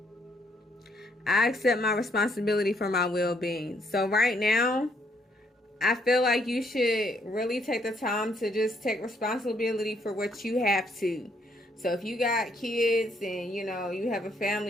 I accept my responsibility for my well-being. So right now, I feel like you should really take the time to just take responsibility for what you have to. So if you got kids and, you know, you have a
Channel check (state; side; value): normal; both; correlation 0.70